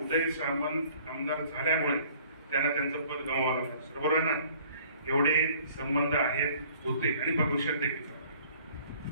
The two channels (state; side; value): inverted; both; correlation -0.54